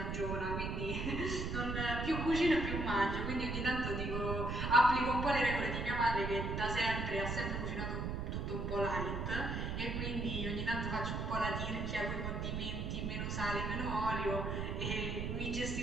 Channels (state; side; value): noise; right; rumble, 2 dB below the sound